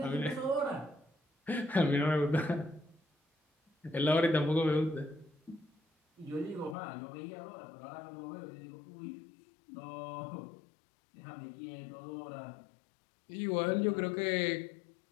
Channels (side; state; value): right; drops out; at 6.8 s